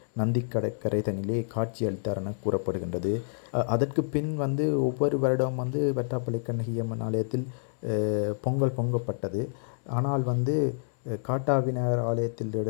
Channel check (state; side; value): silent; right; 59 dB below the other